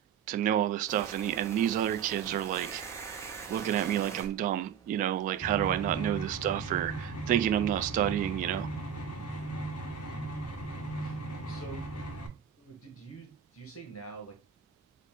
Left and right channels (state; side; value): quieter; left; 8.9 dB